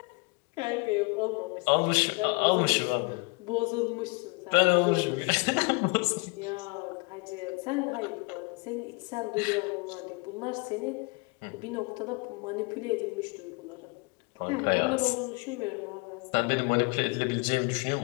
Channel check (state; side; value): quieter; right; 30.8 dB